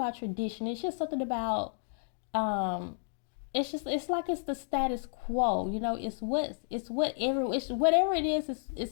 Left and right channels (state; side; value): silent; right; digital silence